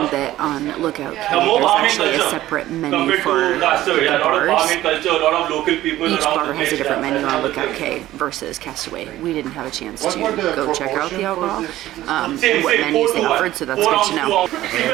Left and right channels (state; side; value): quieter; left; 14.8 dB